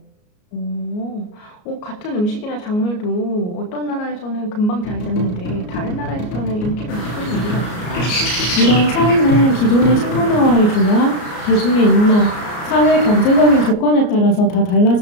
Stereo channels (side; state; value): right; late; 33 ms